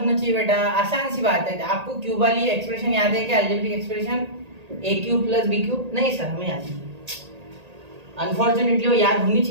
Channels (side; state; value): left; late; 1.8 ms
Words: चाहिए बेटा, आसान सी बात है। आपको क्यूब वाली एक्सप्रेशन याद है क्या, algebraic expression a cube plus B cube? नहीं सर हमें याद नहीं, अनफॉर्चुनेटली वो याद होनी